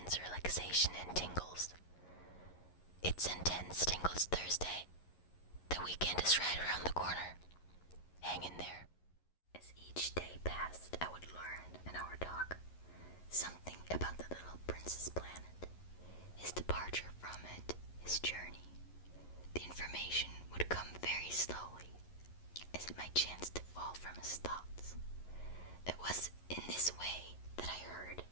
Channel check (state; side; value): late; right; 11 ms